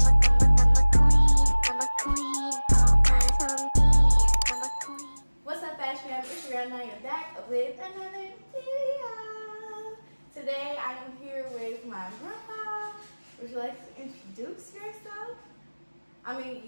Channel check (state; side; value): inverted; both; correlation -1.00